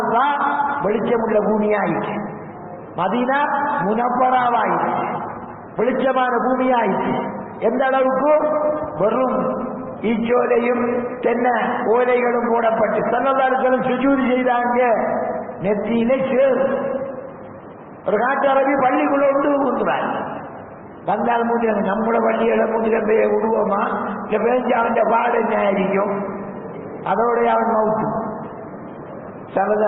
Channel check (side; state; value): both; identical; correlation 1.00